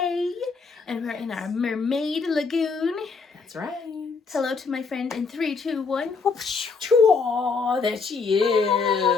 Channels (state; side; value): quieter; right; 4.8 dB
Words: and we're in our Mermaid Lagoon. That's right. Hello to my friend in 3, 2, 1. Chua, there she